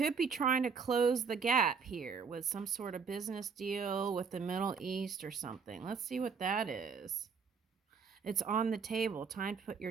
be trying to close the gap here with some sort of business deal with the Middle East or something. Let's see what that is. It's on the table. Time to put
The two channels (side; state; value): left; quieter; 5.8 dB